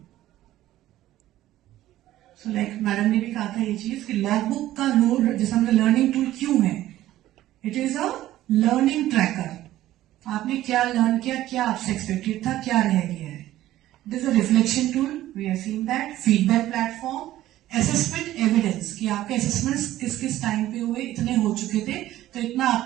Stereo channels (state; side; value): quieter; left; 14.4 dB